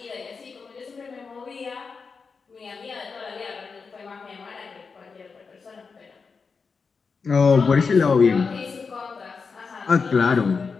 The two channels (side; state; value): right; quieter; 5.1 dB